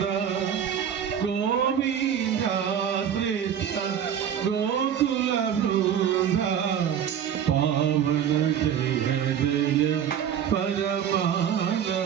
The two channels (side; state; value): left; quieter; 8.9 dB